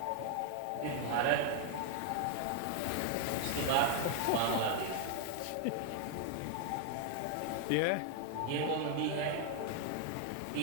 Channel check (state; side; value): different; both; correlation 0.00